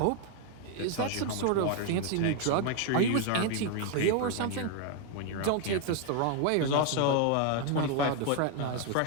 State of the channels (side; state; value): both; different; correlation 0.01